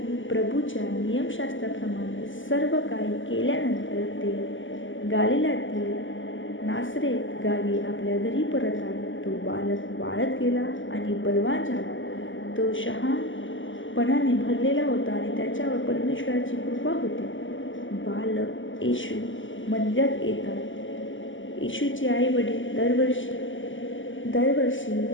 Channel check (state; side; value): late; right; 0.56 ms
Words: प्रभूच्या नियमशास्त्राप्रमाणे सर्व काही केल्यानंतर ते गालिलातील नासरेत गावी आपल्या घरी परत आले. तो बालक वाढत गेला आणि बलवान झाला. तो शहाणपणाने भरलेला होता आणि त्याच्यावर परमेश्वराची कृपा होती. बालक येशू मंदिरात येतात. येशूचे आई वडील दरवर्षी